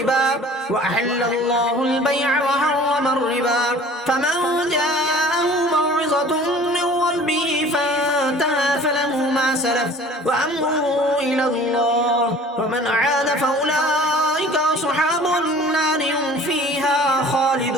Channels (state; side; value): normal; both; correlation 0.46